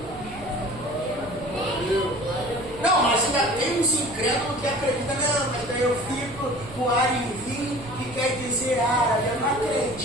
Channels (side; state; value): right; noise; rumble, 16 dB below the sound